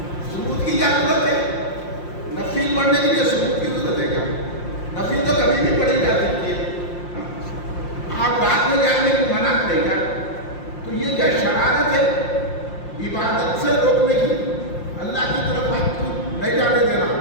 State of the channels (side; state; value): right; late; 5.7 ms